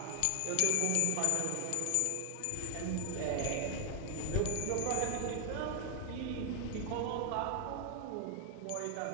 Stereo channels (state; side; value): different; both; correlation 0.00